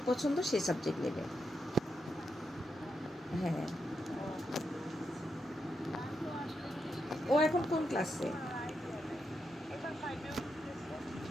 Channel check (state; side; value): normal; both; correlation 0.84